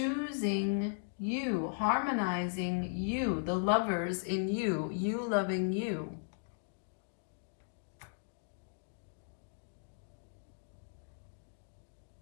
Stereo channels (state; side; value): silent; right; digital silence